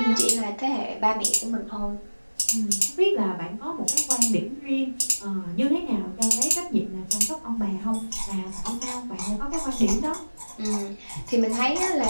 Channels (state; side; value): inverted; both; correlation -1.00